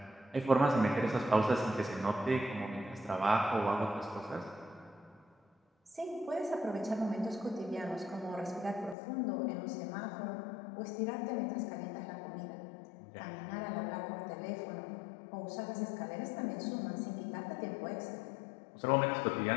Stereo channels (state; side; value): drops out; right; at 9.0 s